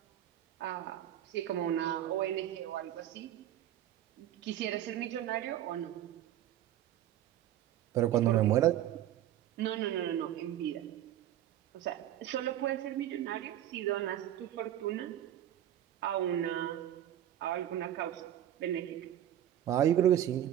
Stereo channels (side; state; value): left; quieter; 11.8 dB